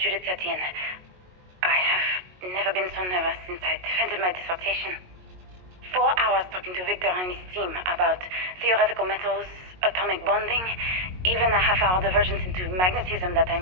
Tatienne. I have never been so nervous since I defended my dissertation. 4 hours talking to Victor and his team about theoretical metals, atomic bonding, even a half-hour divergence into magnetism that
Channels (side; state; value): left; late; 22 ms